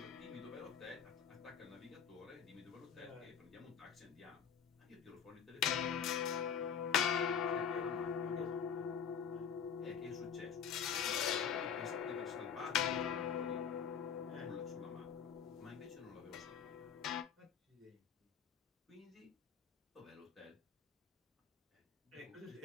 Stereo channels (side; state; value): right; quieter; 7.5 dB